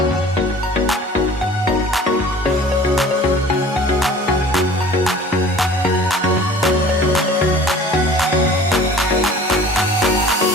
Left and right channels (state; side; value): normal; both; correlation 0.46